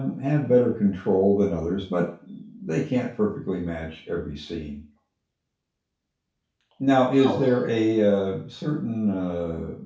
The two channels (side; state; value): both; identical; correlation 1.00